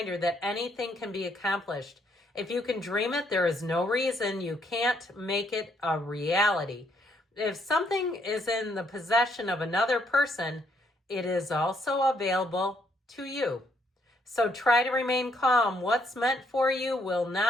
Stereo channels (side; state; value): both; normal; correlation 0.71